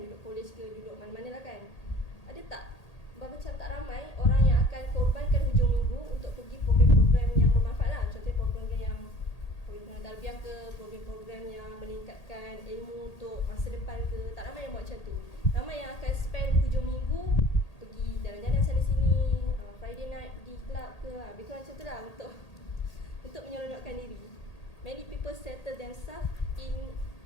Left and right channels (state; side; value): late; right; 1.8 ms